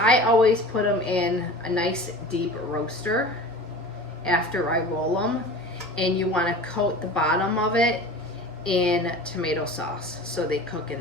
always put them in a nice deep roaster after I roll them. And you want to coat the bottom of it in tomato sauce so they cook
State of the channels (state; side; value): normal; both; correlation 0.37